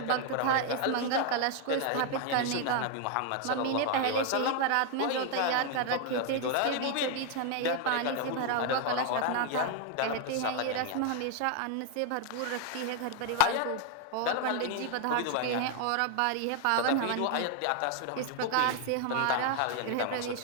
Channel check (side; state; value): both; different; correlation 0.01